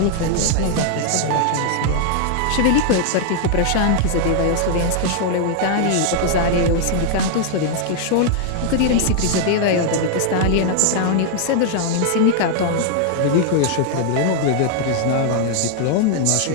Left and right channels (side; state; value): both; different; correlation 0.00